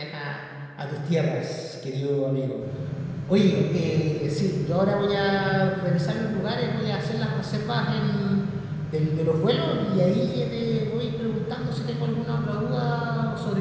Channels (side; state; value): both; identical; correlation 1.00